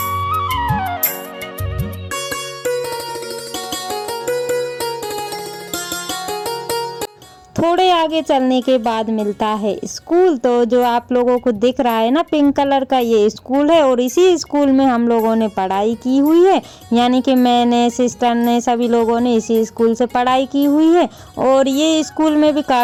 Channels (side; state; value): both; identical; correlation 1.00